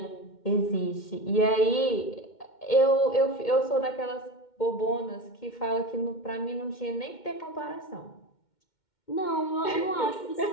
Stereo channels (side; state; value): right; late; 2.1 ms